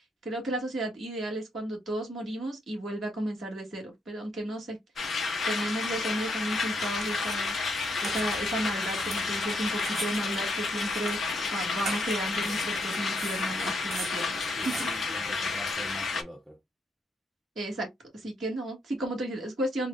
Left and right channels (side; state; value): both; normal; correlation 0.74